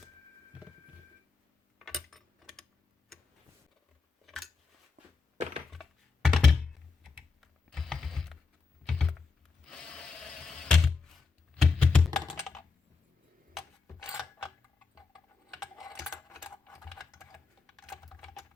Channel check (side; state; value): right; quieter; 4.5 dB